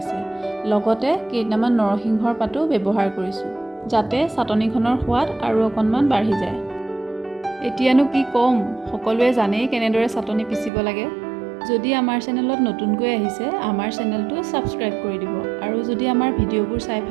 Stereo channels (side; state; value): left; drops out; at 10.7 s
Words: লগতে কেইটামান নৰসিংহৰ পাতো ব্যৱহাৰ কৰিছোঁ, যাতে চাটনিখনৰ সোৱাদ আৰু অকণমান বাঢ়ি যায়। এতিয়ানো কি ক'ম, সকলোৱে জানেই কেনেদৰে চাটনি পিচিব লাগে। যদি আমাৰ চেনেলত নতুনকৈ আহিছে, আমাৰ চেনেলটো ছাবস্ক্ৰাইব কৰি দিব আৰু যদি আমাৰ ভিডিঅ'বোৰ চাই